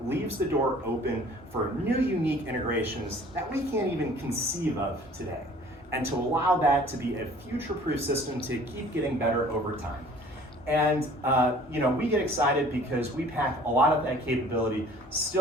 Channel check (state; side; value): normal; both; correlation 0.51